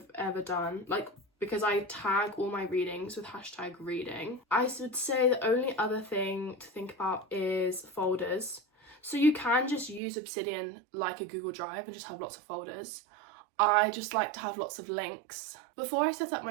ever done, like because I tag all my readings with hashtag reading. I would say the only other thing to think about is folders. So you can just use Obsidian like a Google Drive and just have lots of folders. I just like to have lots of links. Before I set up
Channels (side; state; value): left; drops out; at 10.0 s